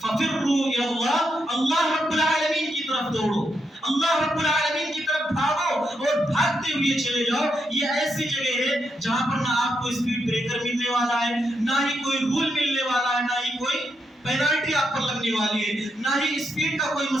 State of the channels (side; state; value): both; normal; correlation 0.82